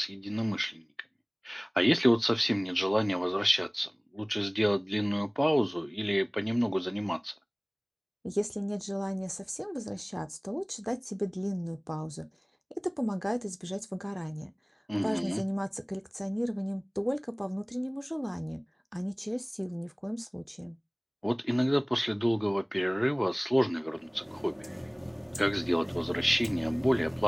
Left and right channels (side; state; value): both; identical; correlation 1.00